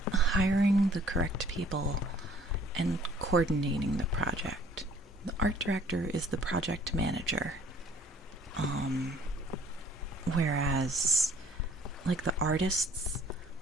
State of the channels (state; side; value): normal; both; correlation 0.57